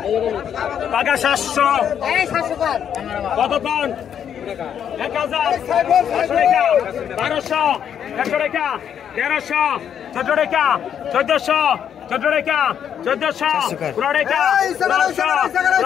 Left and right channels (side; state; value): right; quieter; 8.7 dB